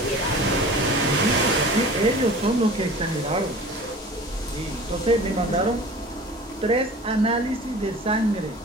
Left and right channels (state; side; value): normal; both; correlation 0.41